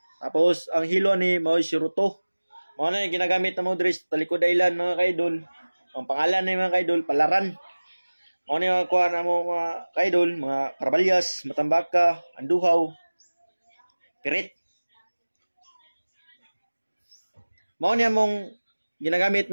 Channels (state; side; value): inverted; both; correlation -1.00